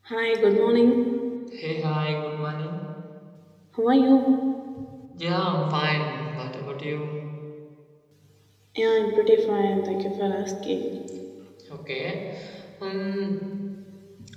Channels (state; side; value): identical; both; correlation 1.00